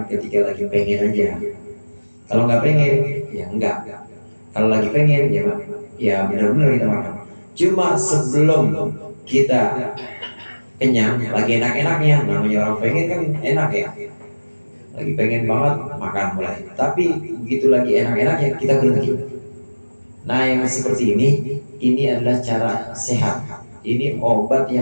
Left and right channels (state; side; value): inverted; both; correlation -1.00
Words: ketika lagi pengen aja. Kalau nggak pengen, ya enggak. Kalau lagi pengen, ya benar-benar kita makan. Cuma sebelum kita kenyang, lagi enak-enaknya, namanya orang pengen kan enak ya. Lagi pengen banget, makan mulai. Tapi begitu lagi enak-enaknya, kita berhenti. Nah yang seperti ini adalah cara sehat. Ini obat